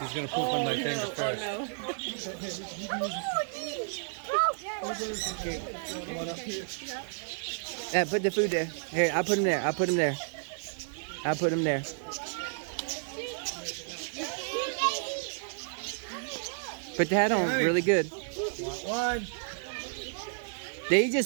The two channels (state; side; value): silent; left; digital silence